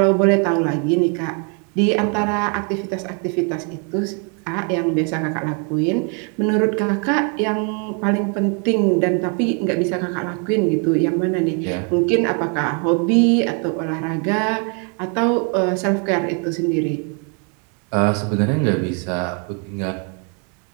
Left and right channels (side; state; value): left; quieter; 38.1 dB